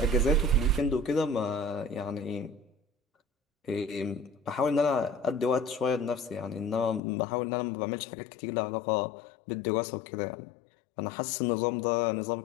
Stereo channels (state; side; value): drops out; right; at 7.0 s